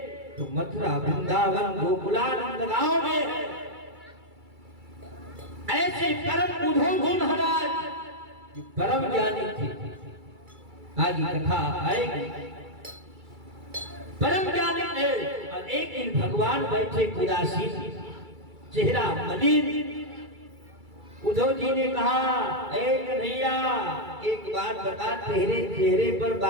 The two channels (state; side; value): late; left; 2.3 ms